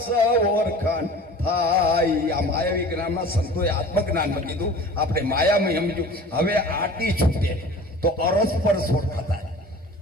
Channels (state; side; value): normal; both; correlation 0.42